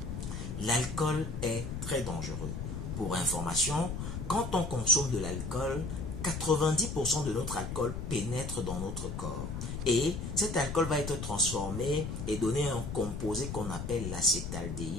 L'alcool est très dangereux. Pour information, quand on consomme de l'alcool, 90% de notre alcool pénètre dans notre corps. Et cet alcool va être transformé et donner un composé qu'on appelle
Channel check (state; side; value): noise; left; rumble, 5 dB below the sound